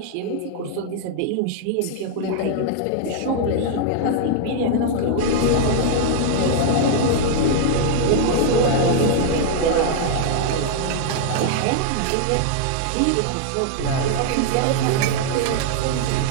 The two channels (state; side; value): different; both; correlation 0.00